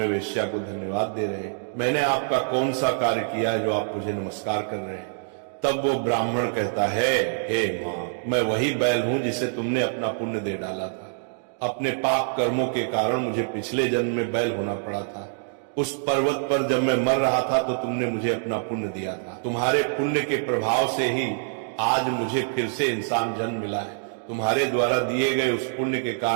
वेश्या को धन्यवाद दे रहे हैं? मैंने आपका कौन सा कार्य किया है जो आप मुझे नमस्कार कर रहे हैं? तब वो ब्राह्मण कहता है, हे माँ, मैं वही बैल हूं जिसे तुमने अपना पुण्य दे डाला था। अपने पाप कर्मों के कारण मुझे पिछले जन्म में बैल होना पड़ा था। उस पर्वत पर जब मैं मर रहा था तो तुमने मुझे अपना पुण्य दिया था। तुम्हारे पुण्य के प्रभाव से ही आज मुझे फिर से इंसान जन्म मिला है। तुम्हारे द्वारा दिए गए उस पुण्य के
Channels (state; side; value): silent; left; digital silence